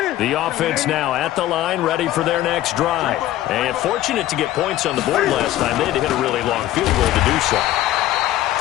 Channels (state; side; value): quieter; right; 14.3 dB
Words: The offense now at the line, ready for their next drive. And fortunate to get points on the board last time. They had to hit a really long field goal to do so.